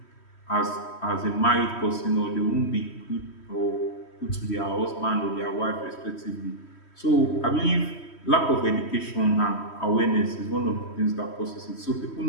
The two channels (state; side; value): late; right; 3.1 ms